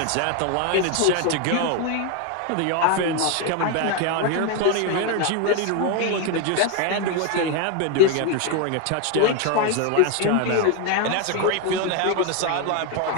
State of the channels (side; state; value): both; different; correlation 0.01